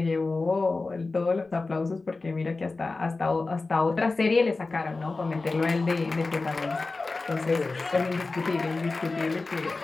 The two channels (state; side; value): quieter; right; 3.6 dB